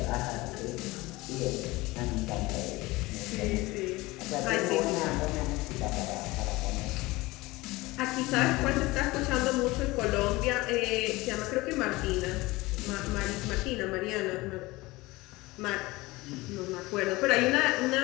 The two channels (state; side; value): quieter; right; 21.0 dB